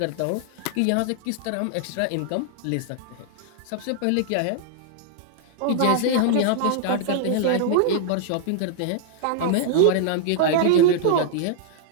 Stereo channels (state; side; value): different; both; correlation -0.01